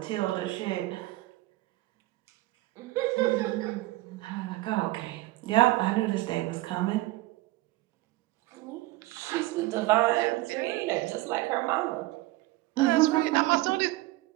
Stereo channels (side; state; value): left; quieter; 18.6 dB